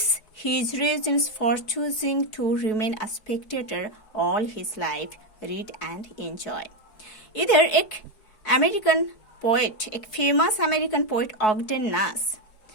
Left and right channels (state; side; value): late; right; 4.6 ms